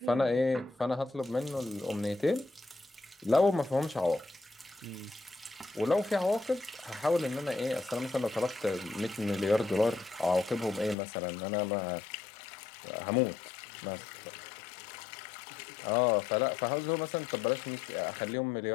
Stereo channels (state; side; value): drops out; right; at 11.0 s